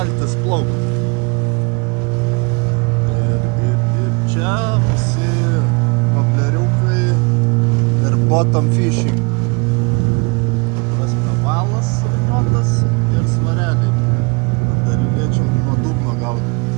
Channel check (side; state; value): left; quieter; 28.8 dB